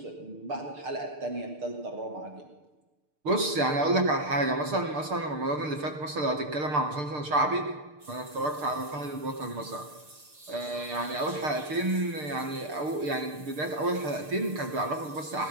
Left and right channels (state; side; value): late; left; 6.7 ms